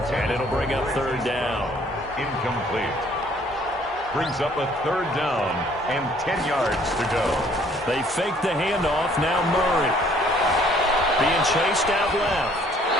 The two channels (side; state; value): both; normal; correlation 0.60